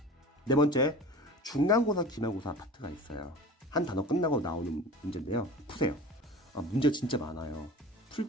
네 번째, 중간고사, 기말고사 파트가 있어요. 한 단어 끝나고 나오는 문제인데요. 푸세요. 문제가 진짜 많아요. 풀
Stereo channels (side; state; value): both; normal; correlation 0.38